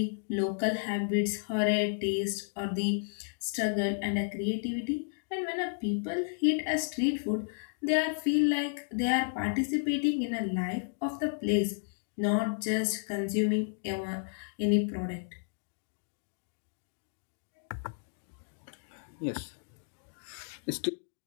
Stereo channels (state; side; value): silent; right; digital silence